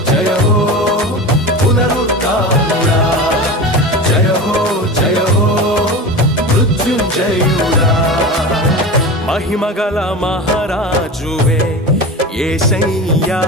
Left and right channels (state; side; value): normal; both; correlation 0.29